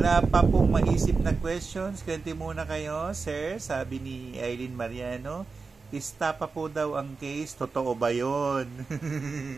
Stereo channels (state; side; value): quieter; left; 4.5 dB